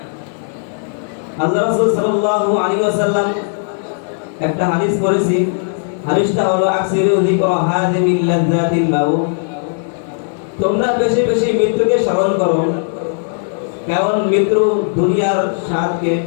আল্লাহ রাসূল সাল্লাল্লাহু আলাইহি ওয়াসাল্লাম একটা হাদিস পড়েছি, হাদিসটা হলো আকসিরু যিকরা হাযিমিল লাযযাতিল মাউত, তোমরা বেশি বেশি মৃত্যুকে স্মরণ করো, কারণ মৃত্যু দুনিয়ার স্বাদকে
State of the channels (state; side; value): silent; right; 60 dB below the other